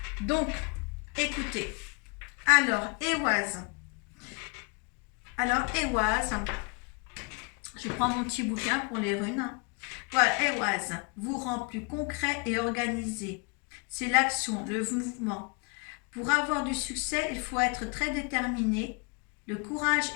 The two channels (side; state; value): right; quieter; 30.9 dB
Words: Donc, écoutez. Alors, Ehwaz. Je prends mon petit bouquin pour les runes. Voilà, Ehwaz vous rend plus concret et organisé. C'est l'action, le mouvement. Pour avoir du succès, il faut être très déterminé. Le courage